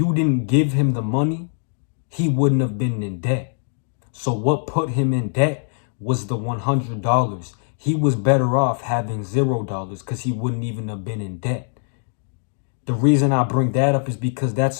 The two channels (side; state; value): right; silent; digital silence